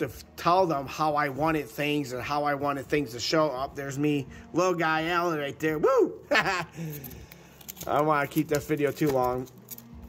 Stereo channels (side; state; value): both; identical; correlation 1.00